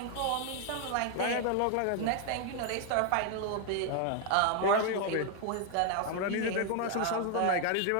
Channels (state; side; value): different; both; correlation 0.00